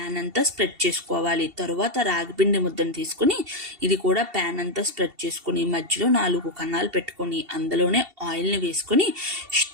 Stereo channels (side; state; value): left; late; 2.7 ms